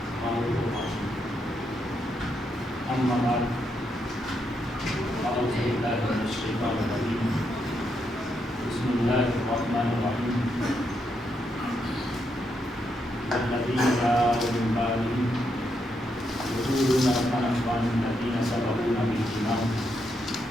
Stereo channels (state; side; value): normal; both; correlation 0.80